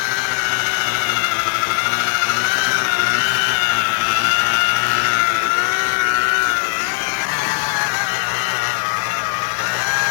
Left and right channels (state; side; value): silent; right; digital silence